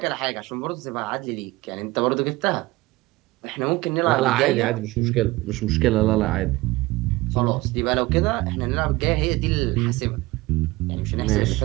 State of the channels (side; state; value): left; quieter; 20.2 dB